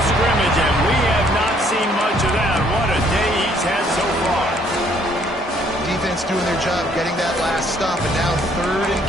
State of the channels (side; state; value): both; normal; correlation 0.64